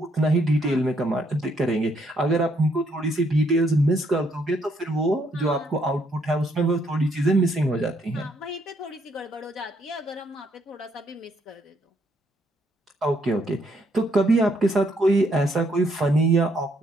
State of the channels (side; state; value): both; normal; correlation 0.71